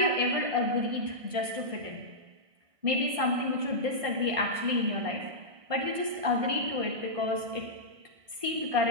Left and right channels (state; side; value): late; left; 1.6 ms